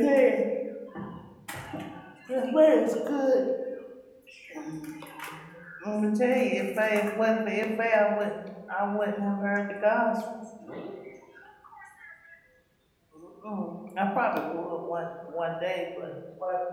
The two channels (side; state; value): both; identical; correlation 1.00